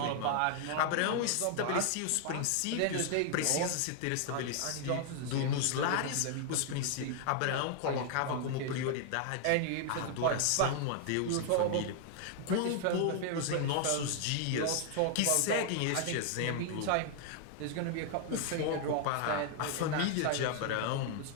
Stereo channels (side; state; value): both; different; correlation 0.00